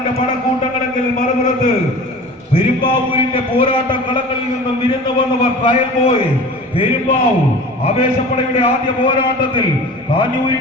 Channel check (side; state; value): both; normal; correlation 0.39